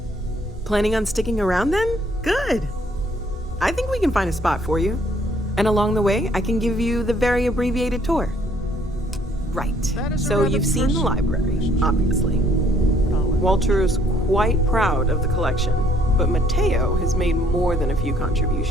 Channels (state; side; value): normal; both; correlation 0.63